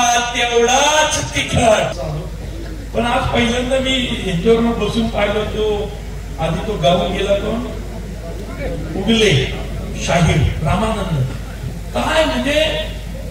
तेवढाच तिखट. पण आज पहिल्यांदा मी यांच्यावर बसून पाहिलं, तो आधी तो गावून गेला, कोण उगले शाहीर रामानंद. काय म्हणजे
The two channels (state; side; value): identical; both; correlation 1.00